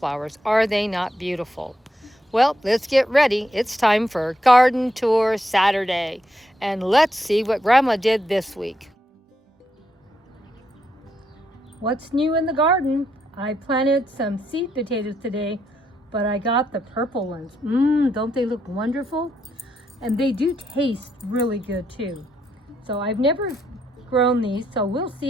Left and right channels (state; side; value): normal; both; correlation 0.79